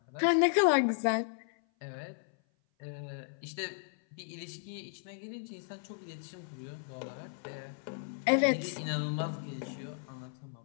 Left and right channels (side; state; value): right; silent; 55 dB below the other